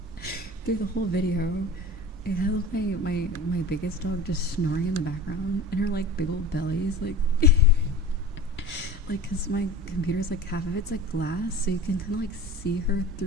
through the whole video, it has my biggest dog just snoring in the background, and her like big old bellies like. Like, cause my computer's like half of it's like glass, so you can kind of like see her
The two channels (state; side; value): normal; both; correlation 0.36